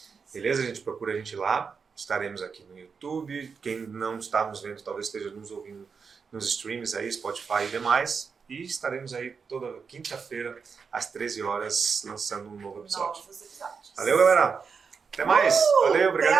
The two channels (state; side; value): quieter; left; 5.6 dB